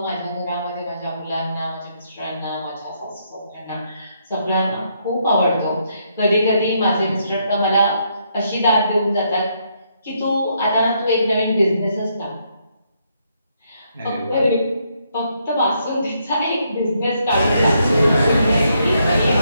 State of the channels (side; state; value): both; inverted; correlation -0.75